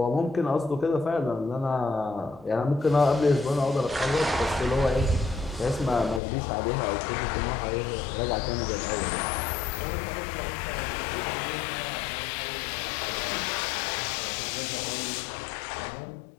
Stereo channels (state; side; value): drops out; right; at 6.2 s